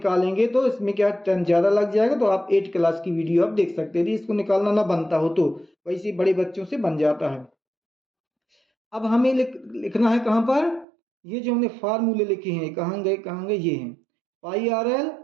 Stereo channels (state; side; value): drops out; left; at 10.9 s